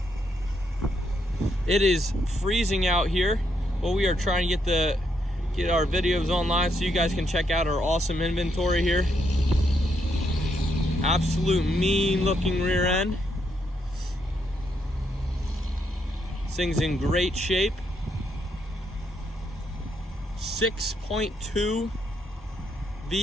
It is freezing out here, but we are trying to get our videos online so you guys can check out our awesome inventory here. Absolute mean looking rear end. This thing's in great shape. 6.2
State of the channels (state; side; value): normal; both; correlation 0.77